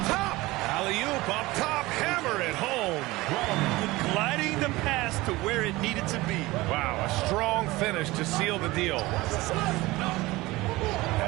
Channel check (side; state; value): left; quieter; 20.1 dB